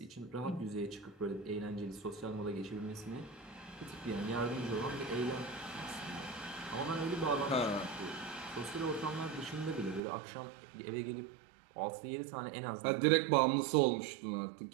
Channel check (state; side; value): drops out; left; at 10.0 s